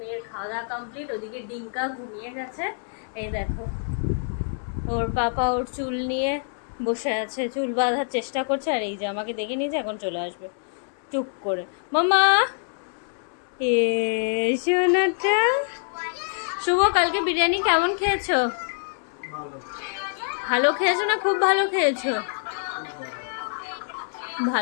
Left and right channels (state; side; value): silent; right; 61 dB below the other